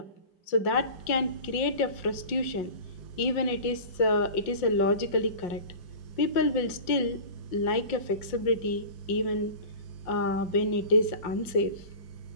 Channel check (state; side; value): late; right; 5.6 ms